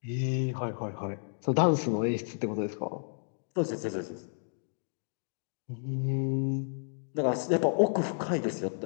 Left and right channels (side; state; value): right; silent; digital silence